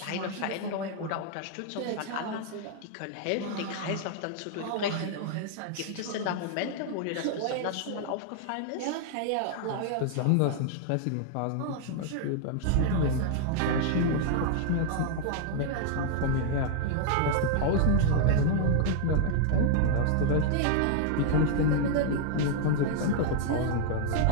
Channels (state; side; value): different; both; correlation 0.00